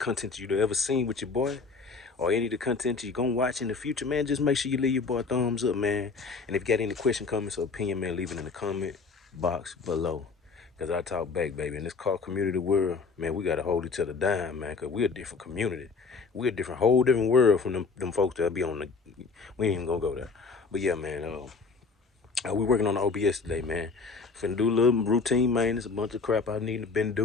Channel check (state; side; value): quieter; right; 4.6 dB